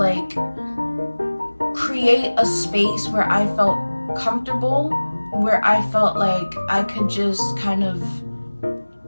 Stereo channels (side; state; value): both; inverted; correlation -1.00